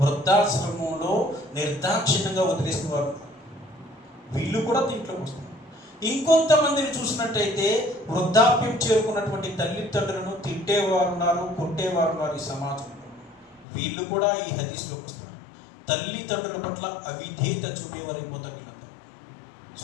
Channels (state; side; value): drops out; right; at 13.7 s